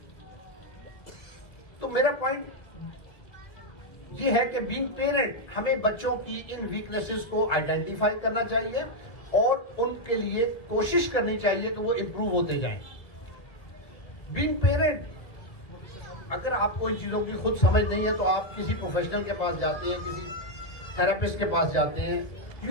तो मेरा पॉइंट ये है कि बीइंग पेरेंट हमें बच्चों की इन वीकनेसेस को आइडेंटिफाई करना चाहिए और उनके लिए कोशिश करनी चाहिए कि वो इंप्रूव होते जाएं। बीइंग पेरेंट, अगर आपको इन चीजों की खुद समझ नहीं है तो आप किसी प्रोफेशनल के पास जाते हैं, किसी थेरेपिस्ट के पास जाते हैं।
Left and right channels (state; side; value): late; right; 1.9 ms